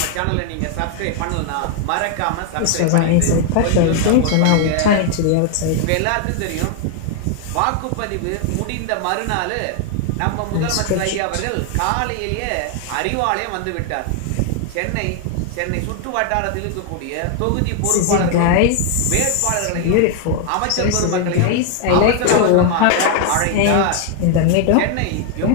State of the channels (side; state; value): both; different; correlation 0.00